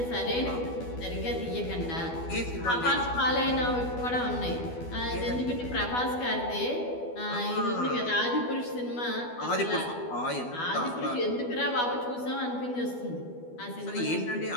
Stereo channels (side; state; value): right; late; 12 ms